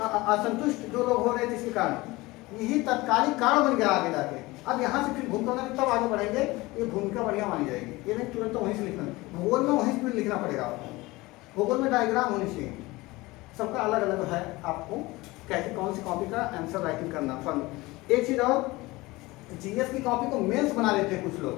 असंतुष्ट जो लोग हो रहे थे इसके कारण यही तत्कालिक कारण बन गया आगे जाके। अब यहाँ से फिर भूमिका में तब आगे बढ़ेंगे, ये भूमिका बढ़िया मानी जाएगी। ये नहीं तुरंत तो वहीं से लिखना, भूगोल में वहीं से लिखना पड़ेगा आपको। भूगोल में डायग्राम होनी चाहिए, सबका अलग अलग है। आपको कैसे कौन सी कॉपी का आंसर राइटिंग करना। फन एक चीज और, जीएस की कॉपी को मेंस बना लेते हैं कुछ लोग।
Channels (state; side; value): quieter; right; 21.0 dB